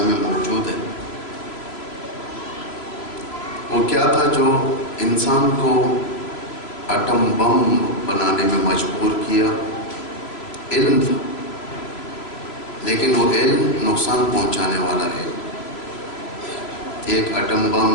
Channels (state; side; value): late; right; 3.1 ms